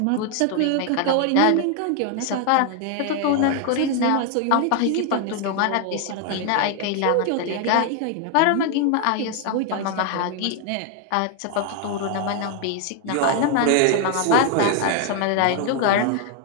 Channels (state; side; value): different; both; correlation 0.00